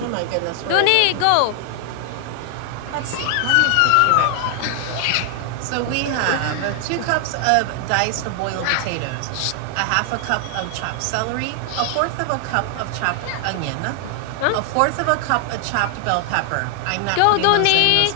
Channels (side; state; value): both; different; correlation 0.00